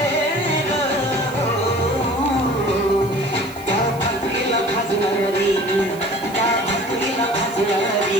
रे. त्या भाकरीला भाजणारी, त्या भाकरीला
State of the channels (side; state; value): right; noise; hiss, 20 dB below the sound